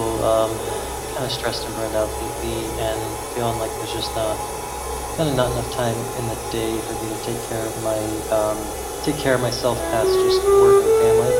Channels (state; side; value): identical; both; correlation 1.00